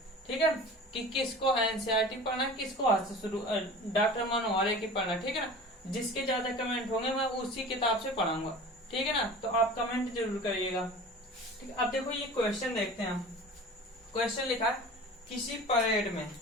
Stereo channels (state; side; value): normal; both; correlation 0.38